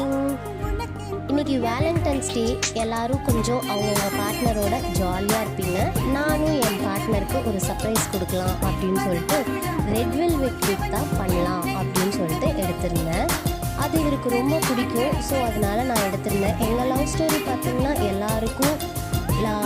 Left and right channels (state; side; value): identical; both; correlation 1.00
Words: இன்னைக்கு Valentine's டே. எல்லாரும் கொஞ்சம் அவங்கவுங்க பார்ட்னரோட ஜாலியாக இருப்பீங்க. நானும் என் பார்ட்னருக்கு ஒரு சர்ப்ரைஸ் கொடுக்கலாம் அப்படின்னு சொல்லிட்டு ரெட் வெல்வெட் கேக் தான் பண்ணலாம் அப்படின்னு சொல்லிட்டு எடுத்திருந்தேன். அது இவருக்கு ரொம்ப பிடிக்கும். ஸோ அதனால் நான் எடுத்திருந்தேன். எங்கள் லவ் ஸ்டோரி பார்த்திங்கன்னா எல்லாருக்கும்